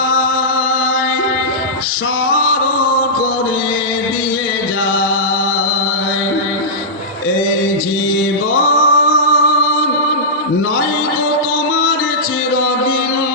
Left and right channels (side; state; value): both; normal; correlation -0.14